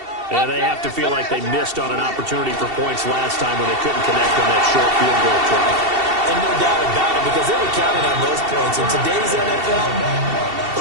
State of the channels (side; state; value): left; late; 2.7 ms